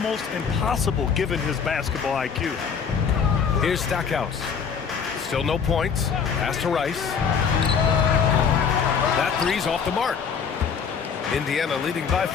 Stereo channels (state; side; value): quieter; right; 6.5 dB